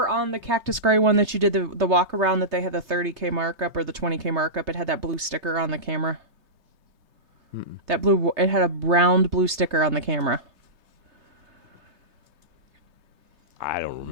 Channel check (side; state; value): left; late; 3.3 ms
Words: on the Cactus Gray one that you did the walk around that they had the 30K markup or the 20K markup? It had that blue sticker on the camera. It had a round blue sticker on the camera. I don't